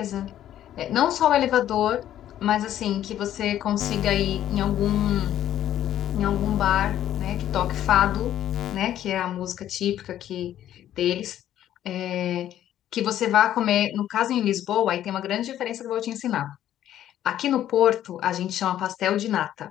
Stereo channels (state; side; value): quieter; right; 11.8 dB